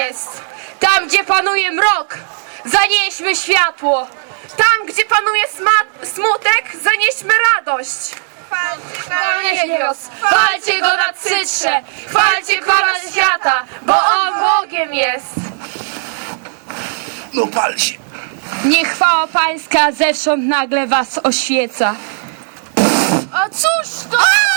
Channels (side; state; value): left; silent; digital silence